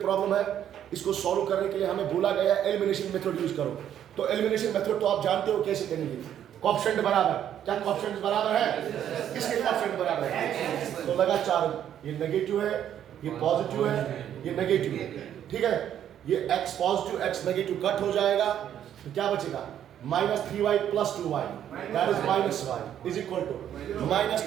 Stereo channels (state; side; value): quieter; left; 10.2 dB